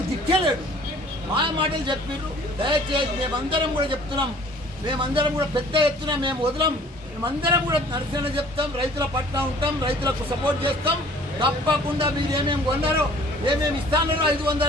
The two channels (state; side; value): normal; both; correlation 0.52